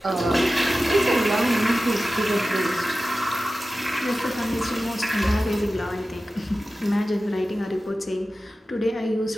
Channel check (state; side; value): normal; both; correlation 0.95